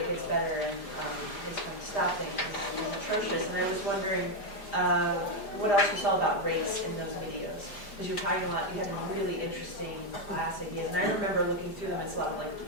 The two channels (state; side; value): late; right; 5.0 ms